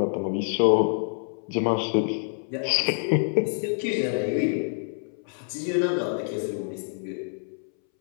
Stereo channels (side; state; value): right; silent; 60 dB below the other